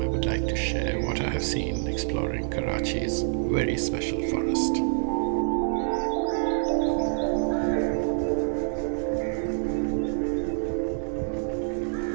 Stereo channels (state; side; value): silent; left; 56 dB below the other